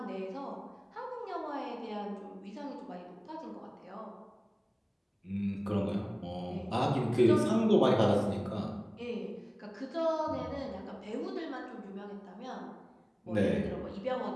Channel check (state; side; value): identical; both; correlation 1.00